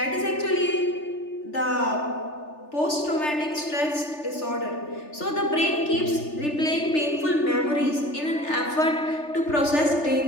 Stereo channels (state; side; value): late; right; 3.4 ms